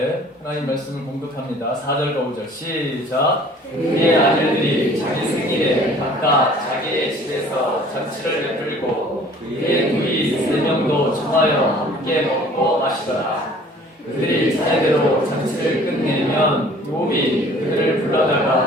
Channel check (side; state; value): both; normal; correlation 0.52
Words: 하나님 말씀을 공독합니다. 4절과 5절 시작. 그의 아들들이 자기 생일에 각각 자기의 집에서 잔치를 베풀고 그의 누이 3명도 청하여 함께 먹고 마시더라. 그들이 차례대로 잔치를 끝내면 욥이 그들을